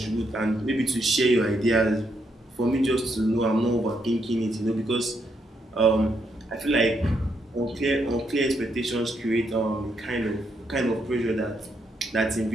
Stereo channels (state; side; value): normal; both; correlation 0.77